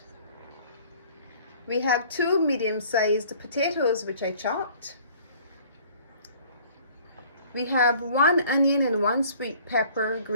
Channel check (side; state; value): both; inverted; correlation -0.53